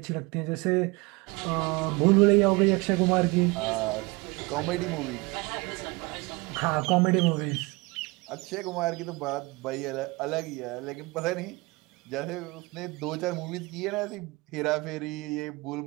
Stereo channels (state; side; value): quieter; left; 25.3 dB